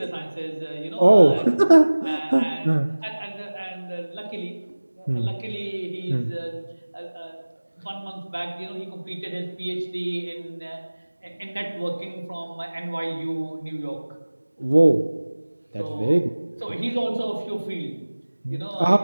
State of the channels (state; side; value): inverted; both; correlation -1.00